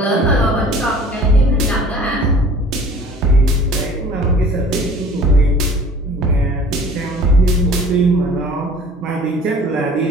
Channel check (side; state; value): both; normal; correlation 0.48